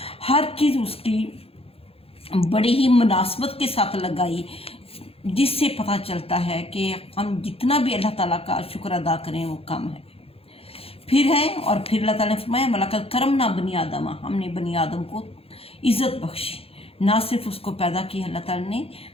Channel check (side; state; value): right; late; 0.28 ms